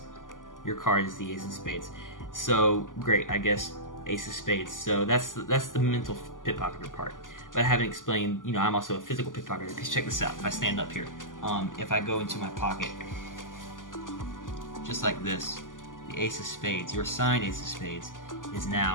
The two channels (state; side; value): late; right; 0.88 ms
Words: Your card is the ace of spades. So great, I guess ace of spades. So that's the mental pickpocketer part. But I haven't explained, you know, I'm also a physical pickpocketer. Because check this out. If I stand up here, if I go into my pocket, just like this, the ace of spades, your signed ace of spades, is